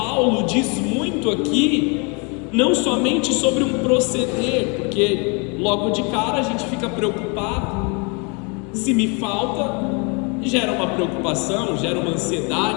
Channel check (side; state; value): right; quieter; 32.8 dB